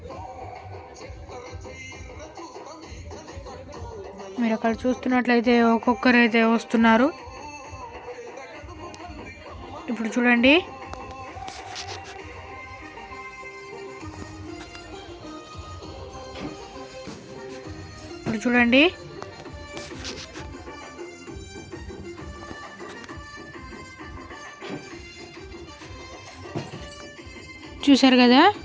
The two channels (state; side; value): identical; both; correlation 1.00